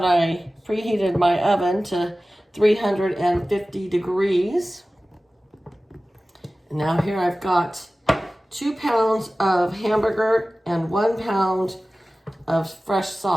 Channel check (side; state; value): both; normal; correlation 0.97